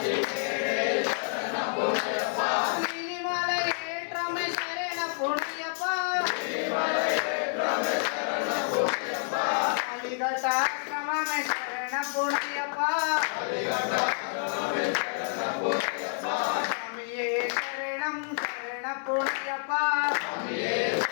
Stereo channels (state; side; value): silent; right; digital silence